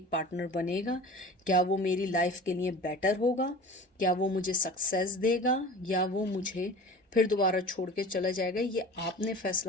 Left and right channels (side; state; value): both; normal; correlation 0.38